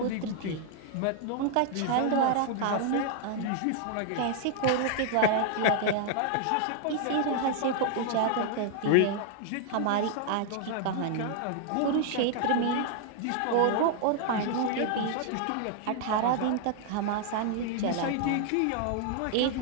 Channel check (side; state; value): both; different; correlation 0.00